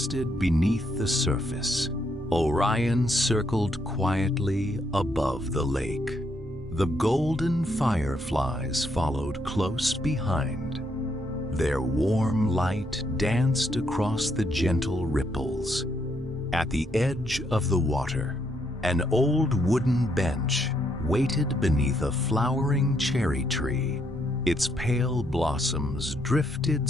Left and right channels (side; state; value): both; normal; correlation 0.75